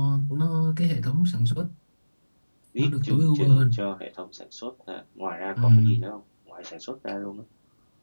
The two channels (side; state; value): both; inverted; correlation -1.00